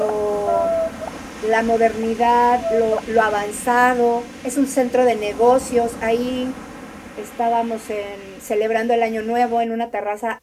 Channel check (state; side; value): identical; both; correlation 1.00